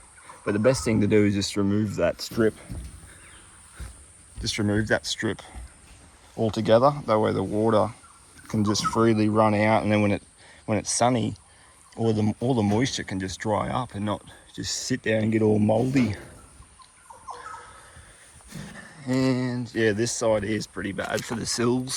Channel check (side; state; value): both; identical; correlation 1.00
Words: But the best thing to do is just remove that strip. Just remove that strip altogether. That way the water can just freely run out, and then when it's sunny, all the moisture can just dry up and not just sit there and get all moldy. And yeah, this side is pretty bad for the